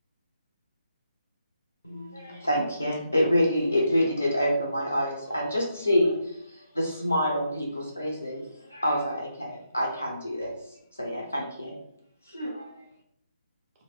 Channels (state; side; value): inverted; both; correlation -0.80